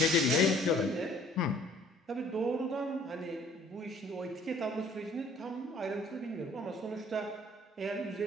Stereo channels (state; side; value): normal; both; correlation 0.56